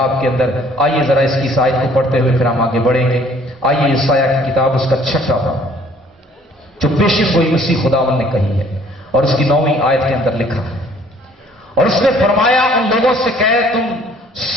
के अंदर, आइए जरा इसकी इस आयत को पढ़ते हुए फिर हम आगे बढ़ेंगे। आइए यशायाह की किताब उसका 6वां बाब, जो पेशिन गोई मसीह खुदावन ने कही है और उसकी 9वीं आयत के अंदर लिखा है। और उसने फरमाया, उन लोगों से कहे, तुम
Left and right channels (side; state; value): both; normal; correlation 0.57